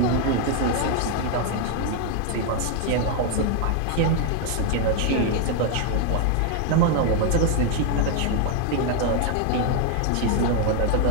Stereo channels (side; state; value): both; different; correlation 0.01